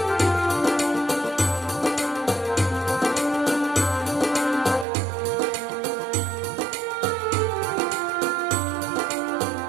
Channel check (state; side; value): drops out; left; at 4.9 s